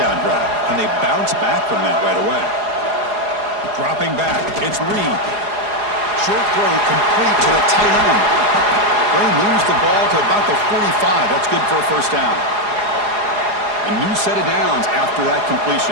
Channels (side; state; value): left; late; 4.8 ms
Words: drive. And they bounce back from that right away. Dropping back, it's Reed. Short throw complete to the tight end. They moves the ball to about the 45. That's good for a first down. A new set of downs after that